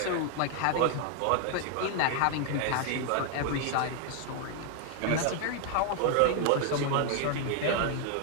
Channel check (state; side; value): different; both; correlation 0.00